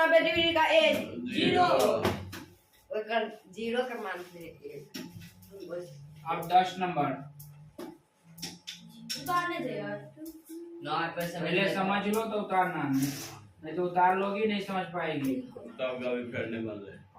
डिग्री का a 0 0 का मान से अब 10 नंबर उतारने दे यार पहले समझ लो तो उतारना नहीं तो उतार लोगी नहीं समझ पाएगी तब कभी करने वाले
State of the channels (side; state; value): both; identical; correlation 1.00